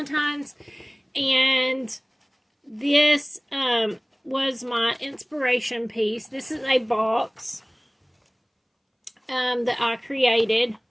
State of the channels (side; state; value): both; identical; correlation 1.00